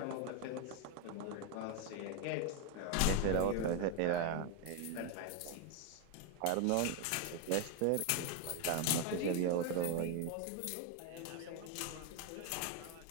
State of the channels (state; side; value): different; both; correlation 0.01